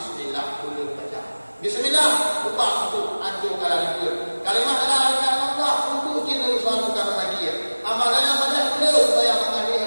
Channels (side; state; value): both; inverted; correlation -1.00